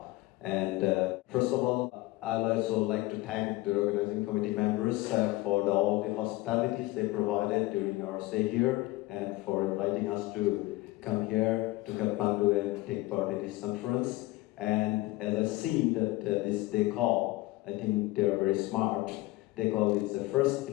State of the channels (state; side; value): quieter; right; 19.8 dB